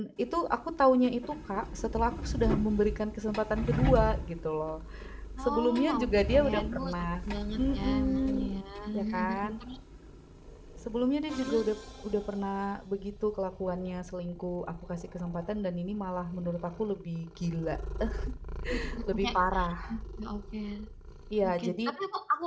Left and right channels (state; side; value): identical; both; correlation 1.00